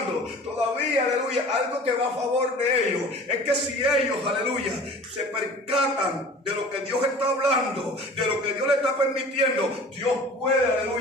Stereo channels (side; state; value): both; normal; correlation 0.43